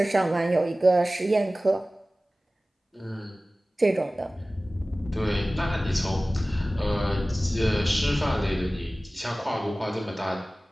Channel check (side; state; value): both; normal; correlation 0.97